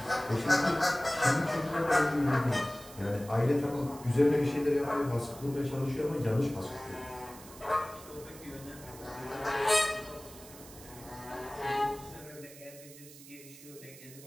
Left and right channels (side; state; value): right; noise; hiss, 18 dB below the sound